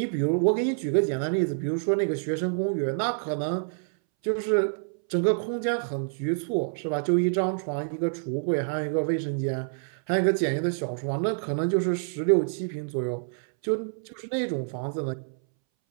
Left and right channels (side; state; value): left; silent; 60 dB below the other